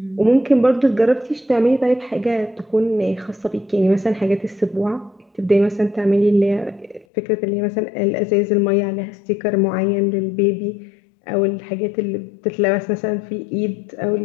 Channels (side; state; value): right; drops out; at 7.1 s